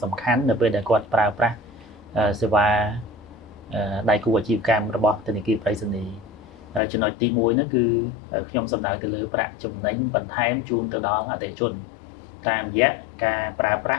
សំខាន់នៅពេលដែលគាត់ប្រើប្រាស់សេវាដៃគូអាជីវកម្មរបស់ធនាគារប្រៃសណីចំណុចទី1នោះគឺខ្ញុំសំដៅទៅលើប្រាក់ចំណេញបន្ថែមជូនទៅដល់អតិថិជនតាមរយៈការប្រើប្រា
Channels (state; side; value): drops out; right; at 6.8 s